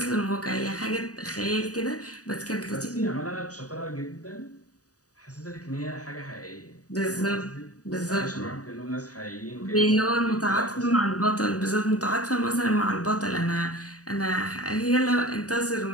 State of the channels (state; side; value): late; right; 0.67 ms